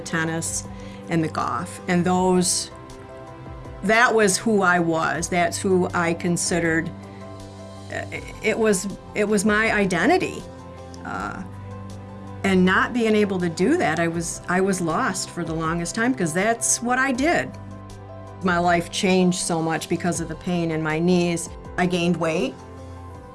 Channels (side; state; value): both; identical; correlation 1.00